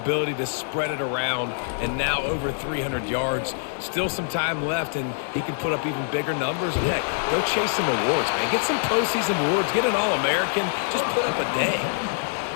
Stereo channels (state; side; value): silent; right; 62 dB below the other